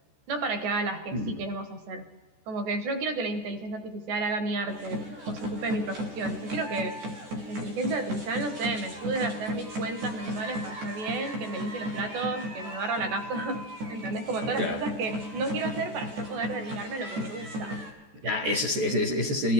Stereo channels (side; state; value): left; late; 14 ms